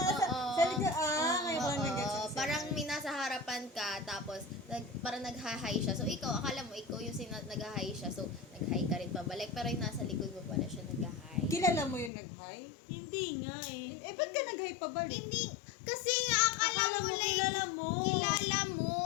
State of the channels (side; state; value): right; drops out; at 12.1 s